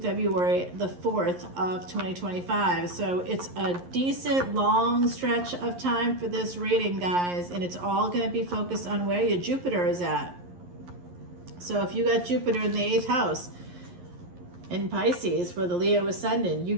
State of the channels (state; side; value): late; left; 11 ms